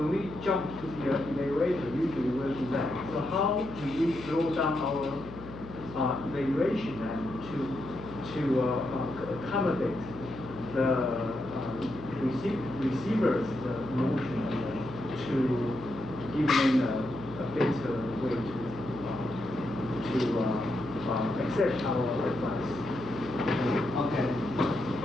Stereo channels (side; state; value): left; noise; hum, 12 dB below the sound